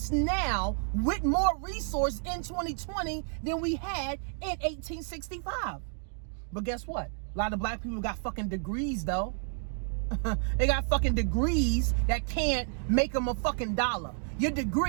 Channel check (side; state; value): left; silent; 57 dB below the other